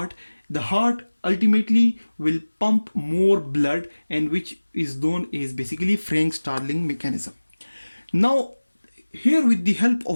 ultimately will pump more blood, and which is known as basically Frank Starling mechanism. Now here, with the help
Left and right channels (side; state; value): both; inverted; correlation -1.00